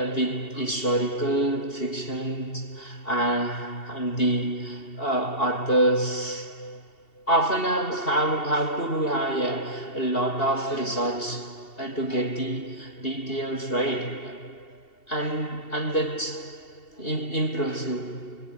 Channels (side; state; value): right; late; 2.7 ms